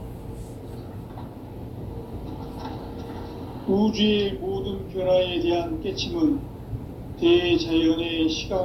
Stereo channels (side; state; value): both; identical; correlation 1.00